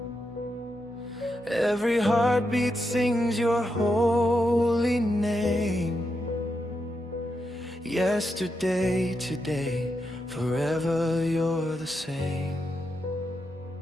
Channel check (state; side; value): normal; both; correlation 0.85